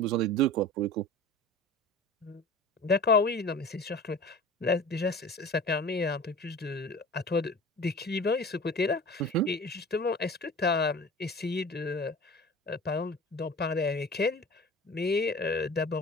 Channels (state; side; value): normal; both; correlation 0.39